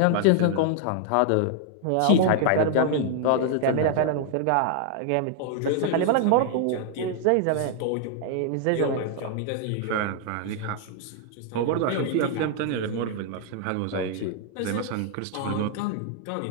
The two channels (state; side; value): different; both; correlation 0.00